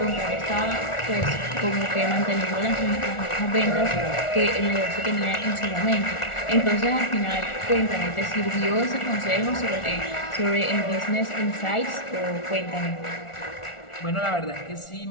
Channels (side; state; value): right; late; 1.4 ms